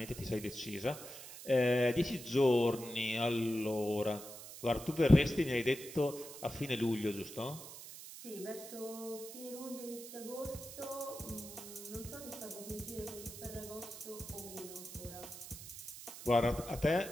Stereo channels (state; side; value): noise; right; hiss, 13 dB below the sound